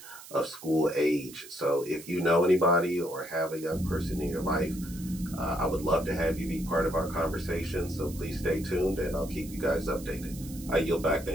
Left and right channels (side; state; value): right; noise; hiss, 16 dB below the sound